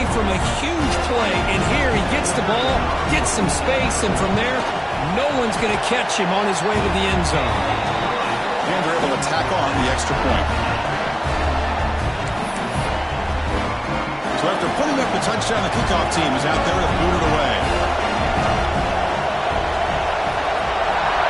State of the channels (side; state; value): both; identical; correlation 1.00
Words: from a huge play, and here he gets the ball, gets some space, and from there, no one's going to catch him on his way to the end zone. And they're able to tack on the extra point. So after putting up the touchdown, the kickoff team is out there to boot it away.